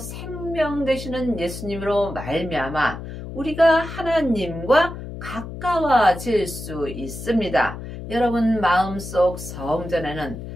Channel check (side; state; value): left; noise; hum, 10 dB below the sound